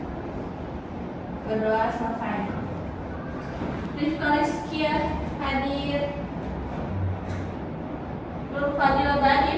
Berdoa selesai. Rifka Rizkia hadir. Nur Fadila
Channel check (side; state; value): both; identical; correlation 1.00